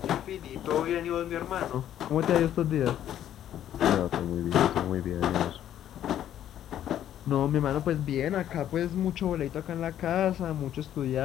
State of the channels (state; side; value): quieter; right; 11.1 dB